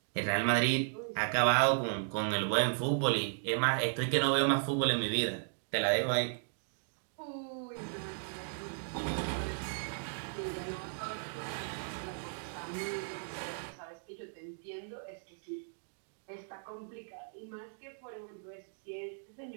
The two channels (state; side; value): silent; left; digital silence